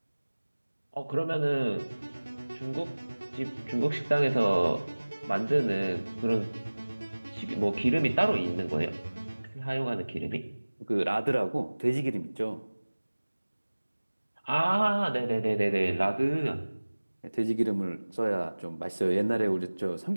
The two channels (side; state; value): both; inverted; correlation -1.00